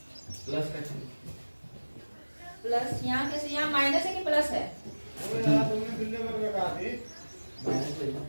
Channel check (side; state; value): both; inverted; correlation -1.00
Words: प्लस यहाँ कैसे? यहाँ माइनस है कि प्लस है?